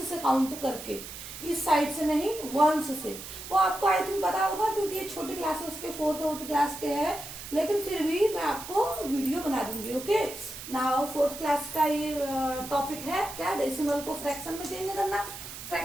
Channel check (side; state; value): right; noise; hiss, 11 dB below the sound